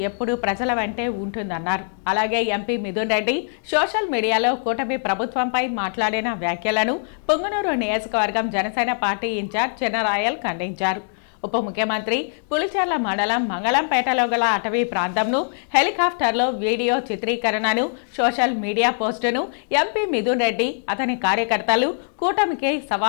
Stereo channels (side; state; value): right; silent; digital silence